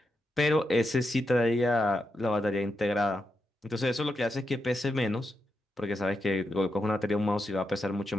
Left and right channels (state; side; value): normal; both; correlation 0.86